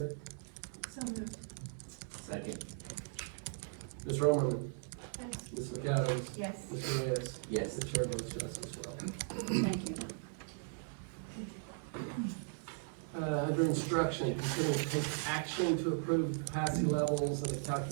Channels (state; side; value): silent; left; 52 dB below the other